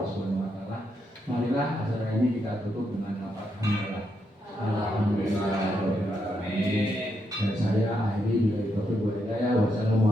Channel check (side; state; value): both; normal; correlation 0.80